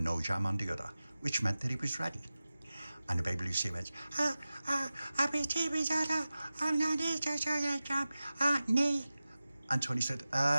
no jam on the other, which meant that he was ready. And the baby Lucia went, nee. And Tony said,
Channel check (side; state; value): both; inverted; correlation -0.96